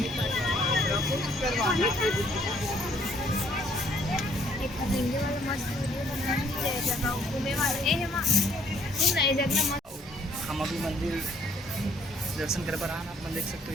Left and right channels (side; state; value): both; normal; correlation 0.64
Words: हम अभी मंदिर दर्शन कर पर आप देख सकते